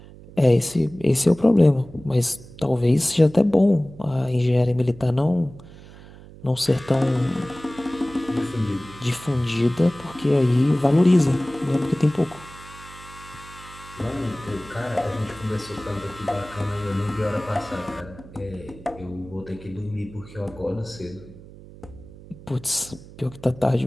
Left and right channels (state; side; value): noise; right; hum, 19 dB below the sound